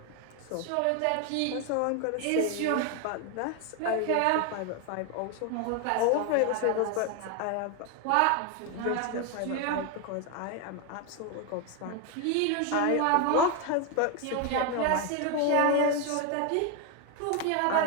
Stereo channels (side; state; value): both; different; correlation 0.01